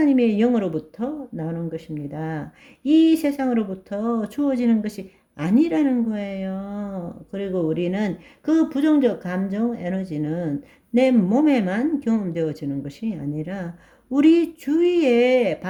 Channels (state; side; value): identical; both; correlation 1.00